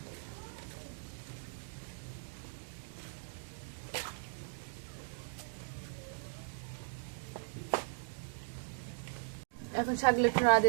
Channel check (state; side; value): silent; left; digital silence